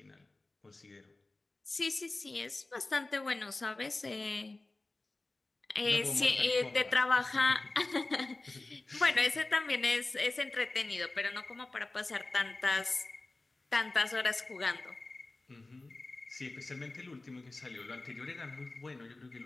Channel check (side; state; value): right; quieter; 3.1 dB